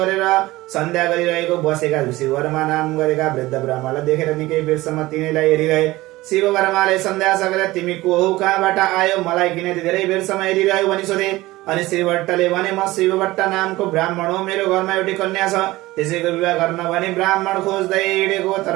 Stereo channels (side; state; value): left; quieter; 18.7 dB